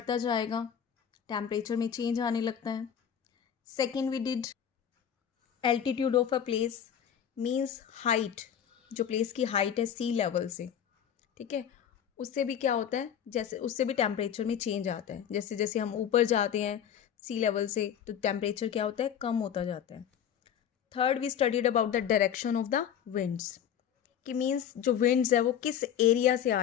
जाएगा temperature में change आने लगता है. Second, we did altitude of a place means height, जो प्लेस की हाइट है सी लेवल से, ठीक है, उससे भी क्या होता है, जैसे उससे भी टेम्परेचर में चेंज आता है. जैसे जैसे हम ऊपर जाते हैं सी लेवल से तो टेम्परेचर क्या होता है, कम होता जाता है. Third, we studied about the direction of the winds, कि मीन्स जो विंड्स है वो किस एरिया से आ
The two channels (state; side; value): quieter; right; 9.0 dB